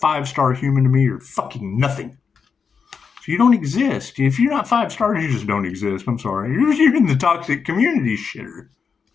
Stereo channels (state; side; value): quieter; right; 5.9 dB